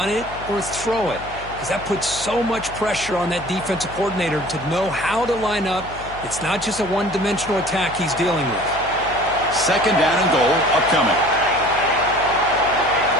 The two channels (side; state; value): left; noise; hum, 16 dB below the sound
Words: it or throw it, because that puts so much pressure on that defensive coordinator to know how to line up. It's not just a one-dimensional attack he's dealing with. 2nd down and goal upcoming.